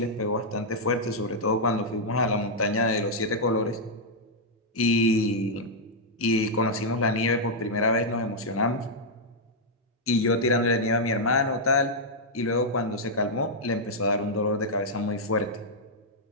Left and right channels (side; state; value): both; normal; correlation -0.05